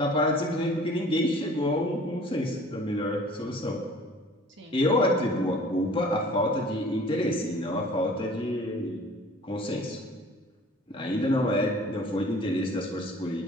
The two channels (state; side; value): normal; both; correlation 0.49